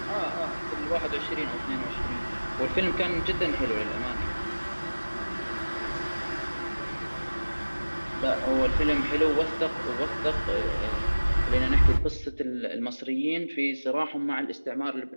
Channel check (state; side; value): inverted; both; correlation -1.00